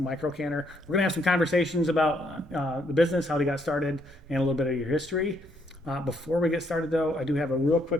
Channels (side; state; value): right; noise; rumble, 25 dB below the sound